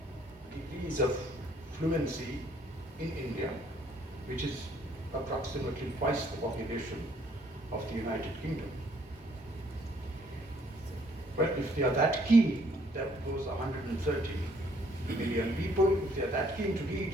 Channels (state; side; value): normal; both; correlation 0.64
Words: degrees of fluency in India, which is approximately twice the population of the United Kingdom. Well, if they are that keen, those 130 million people, if they are that keen to read